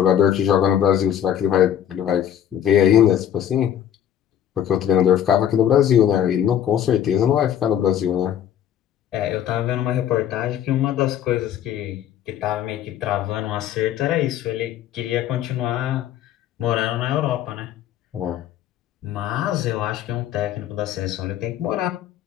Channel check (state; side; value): quieter; right; 10.2 dB